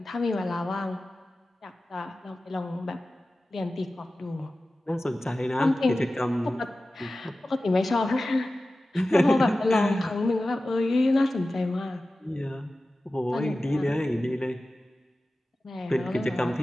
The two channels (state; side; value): normal; both; correlation 0.95